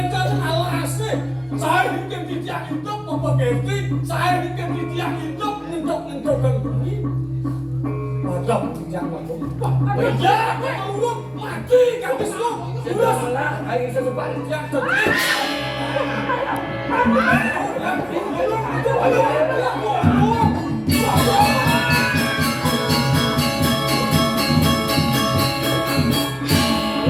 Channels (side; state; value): both; identical; correlation 1.00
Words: ala asin. Saya hidup di tiang hidup apa ganti? Saya hidup di tiang hidup untuk kan bumi. Macam yang macam. Ya, kalau mati kan besok. Sudah malah hari sesuatu yang terjadi.